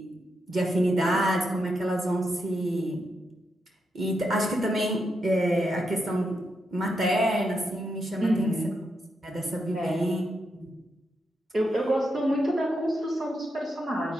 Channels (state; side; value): normal; both; correlation 0.83